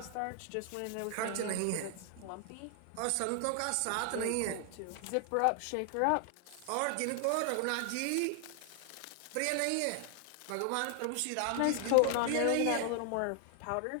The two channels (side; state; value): both; different; correlation 0.00